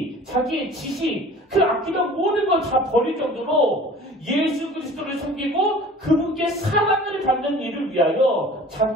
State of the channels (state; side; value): normal; both; correlation 0.45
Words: 자기의 지식, 그 아끼던 모든 걸 다 버릴 정도로 예수 그리스도를 섬기고 그분께 사랑을 받는 일을 위하여